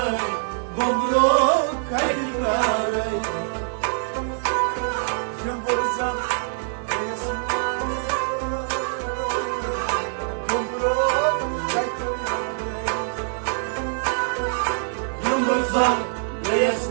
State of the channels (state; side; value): silent; left; 58 dB below the other